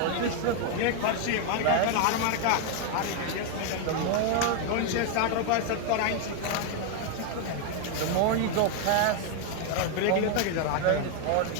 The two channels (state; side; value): different; both; correlation 0.01